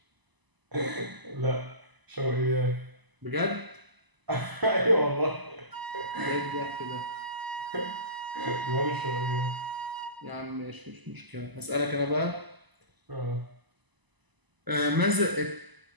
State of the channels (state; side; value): late; left; 1.0 ms